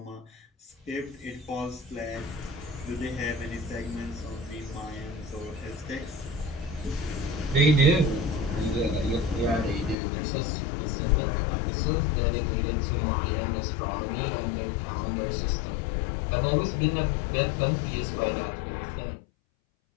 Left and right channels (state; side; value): drops out; right; at 10.0 s